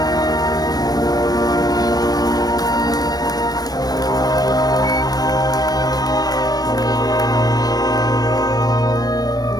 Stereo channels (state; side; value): late; right; 0.19 ms